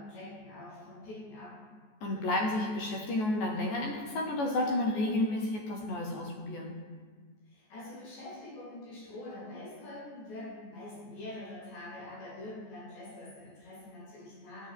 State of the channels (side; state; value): right; late; 14 ms